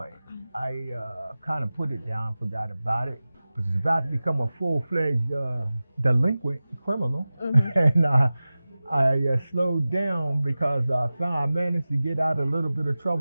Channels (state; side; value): inverted; both; correlation -0.97